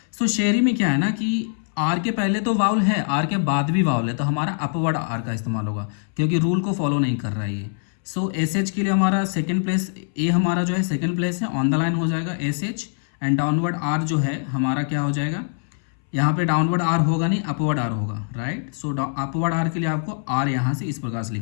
सो शेरी में क्या है ना कि आर के पहले तो वाउल है, आर के बाद भी वाउल है, तो हमारा अपवर्ड आर का इस्तेमाल होगा क्योंकि रूल को फॉलो नहीं कर रहा है ये। सो SH के लिए हमारा सेकंड प्लेस, ए हमारा जो है सेकंड प्लेस है, ऑन द लाइन हो जाएगा SH, एंड डाउनवर्ड आर जो है हमारा क्या हो जाएगा, यहाँ पे डाउनवर्ड आर होगा नहीं, अपवर्ड आर होगा, राइट। सो अपवर्ड आर के लिए आपको आर यहाँ से इस प्रकार से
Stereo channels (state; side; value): silent; right; 63 dB below the other